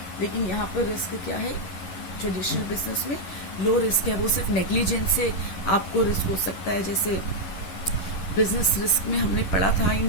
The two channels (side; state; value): right; late; 11 ms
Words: लेकिन यहाँ पर रिस्क क्या है, ट्रेडिशनल बिजनेस में लो रिस्क है, वो सिर्फ नेग्लिजेंस से आपको रिस्क हो सकता है। जैसे बिजनेस रिस्क में हमने पढ़ा था